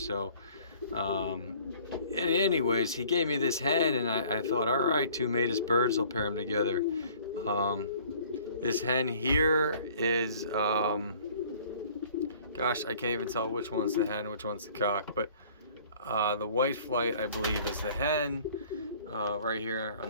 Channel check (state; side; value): inverted; both; correlation -0.53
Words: anyways, he gave me this hen, and I thought, all right, 2 mated birds, I'll pair them together. This hen here is gosh, I can't even tell which one's the hen, which one's the cock, but the white flight, I believe, is the hen, right here